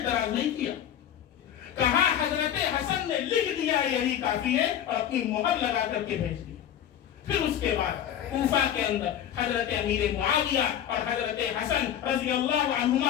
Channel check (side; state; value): right; quieter; 10.1 dB